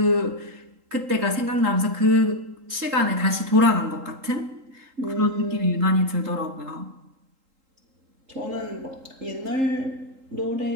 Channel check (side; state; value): left; late; 3.8 ms